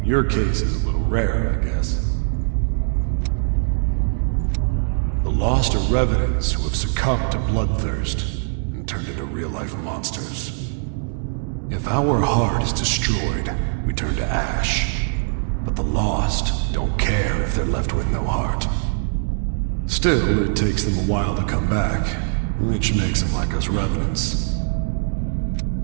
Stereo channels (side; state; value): left; silent; digital silence